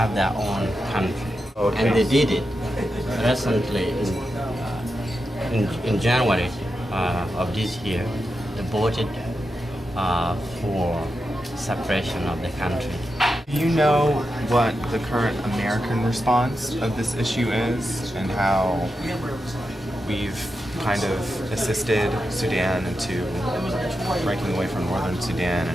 their own country. Okay. And they did it recently in January of this year. They voted for separation of the country. Do you know what the current American response of this issue is and how we've kind of assisted Sudan into breaking away from northern Sudan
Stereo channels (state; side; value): normal; both; correlation 0.88